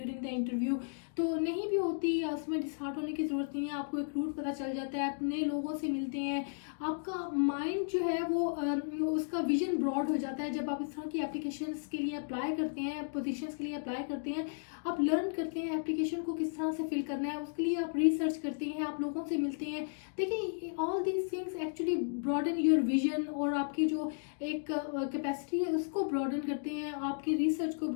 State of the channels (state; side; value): silent; right; digital silence